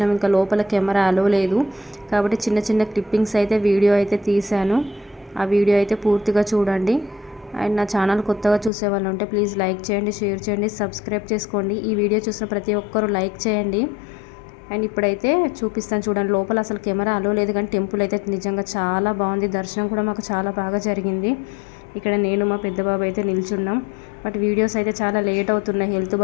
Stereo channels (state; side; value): drops out; right; at 8.7 s